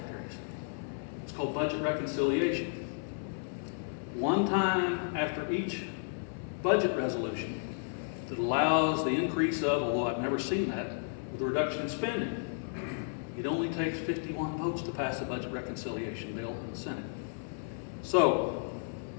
It's called budget reconciliation. One time after each budget resolution that allows the increase of, although I've never seen that, with a reduction in spending. It only takes 51 votes to pass a budget reconciliation bill in the Senate. So,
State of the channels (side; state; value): right; silent; 56 dB below the other